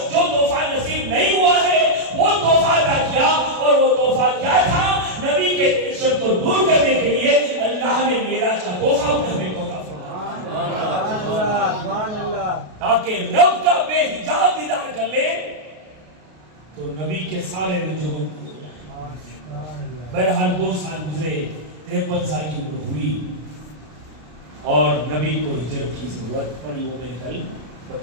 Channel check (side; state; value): left; late; 33 ms